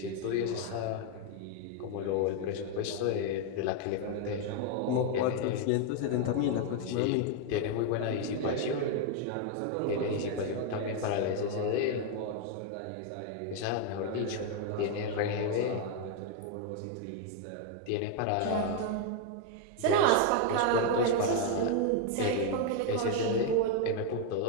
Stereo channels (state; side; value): different; both; correlation 0.01